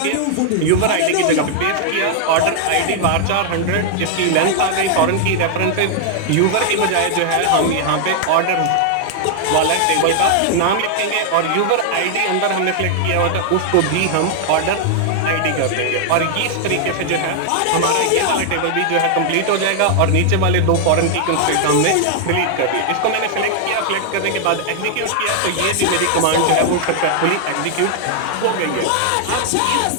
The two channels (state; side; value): different; both; correlation 0.00